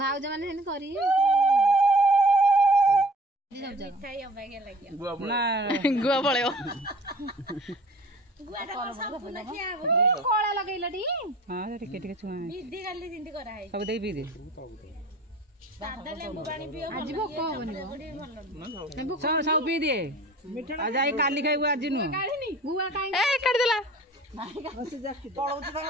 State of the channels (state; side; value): normal; both; correlation 0.45